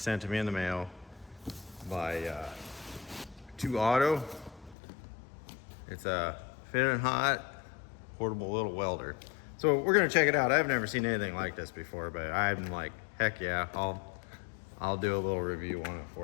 to me in the mail by 2 Auto. It's a Fitinhot portable little welder. So we're gonna check it out. I've never seen anything like this before, but I'm like, heck yeah, I'll do a little review on it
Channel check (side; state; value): right; drops out; at 4.8 s